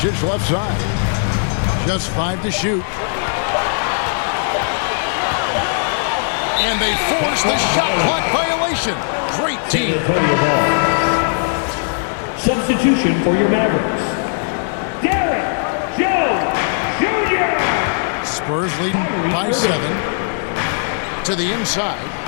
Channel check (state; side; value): silent; right; 67 dB below the other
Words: left side. Just 5 to shoot. And they force the shot clock violation. Great team. Substitution for your Mavericks. Derek Jones Jr. Spurs leading by 7. To the inside.